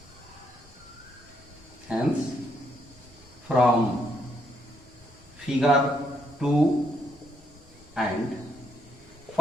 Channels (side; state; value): both; normal; correlation 0.74